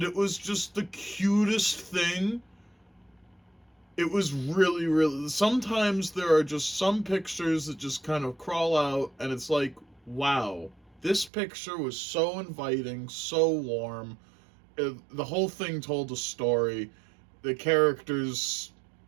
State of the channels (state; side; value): drops out; left; at 11.3 s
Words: it was just the cutest thing. It was really, really. Sometimes there are just some pictures that just kind of crawl out, and it's like, wow, this picture was so inviting, so warm. The whole thing told a story. The characters,